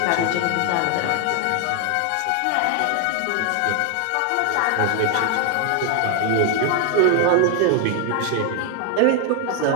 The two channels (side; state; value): both; different; correlation 0.00